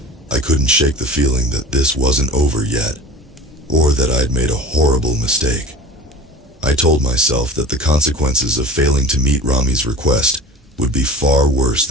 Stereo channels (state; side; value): normal; both; correlation 0.37